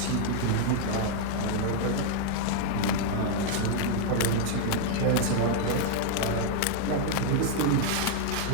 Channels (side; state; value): both; different; correlation 0.00